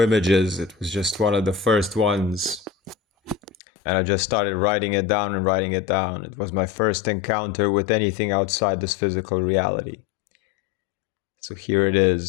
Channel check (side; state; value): right; drops out; at 3.6 s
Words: images. It was just one of the first ones. And I just started writing it down and writing it down. It was my first encounter with anything outside this physical reality. So here it